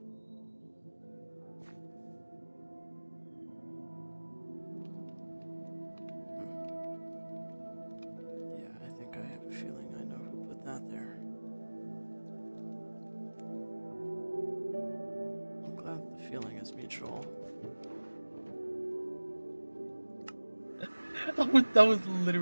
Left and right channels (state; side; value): inverted; both; correlation -1.00